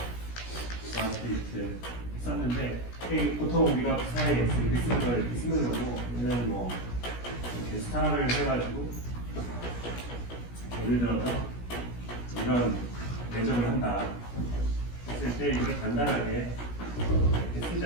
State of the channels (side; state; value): right; late; 17 ms